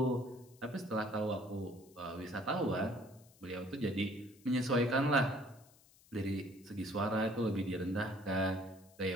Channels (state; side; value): noise; left; hiss, 27 dB below the sound